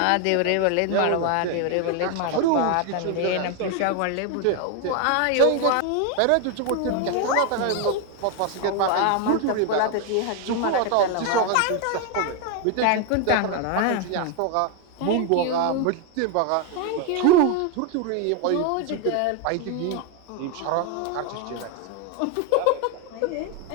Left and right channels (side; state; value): both; different; correlation 0.01